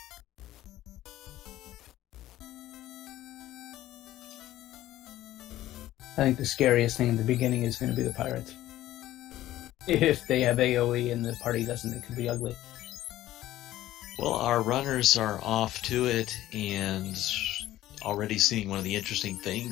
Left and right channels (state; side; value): quieter; right; 14.5 dB